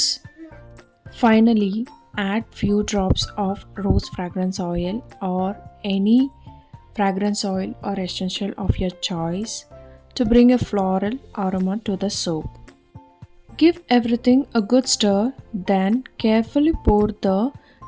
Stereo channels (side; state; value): both; identical; correlation 1.00